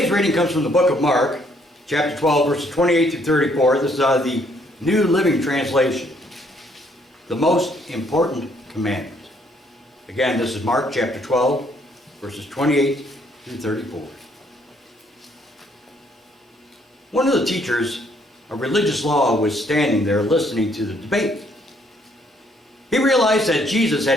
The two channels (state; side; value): normal; both; correlation 0.67